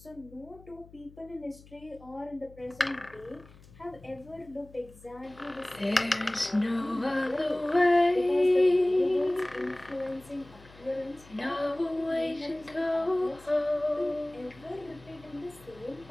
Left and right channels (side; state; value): left; noise; hum, 23 dB below the sound